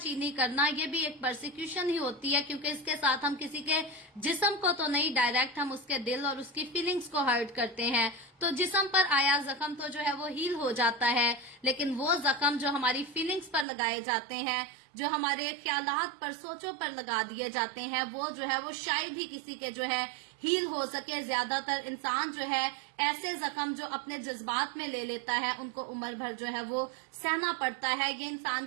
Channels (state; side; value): drops out; left; at 13.7 s